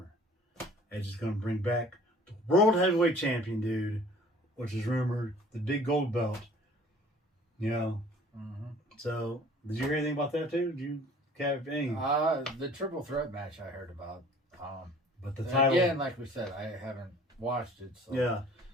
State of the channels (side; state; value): both; normal; correlation 0.50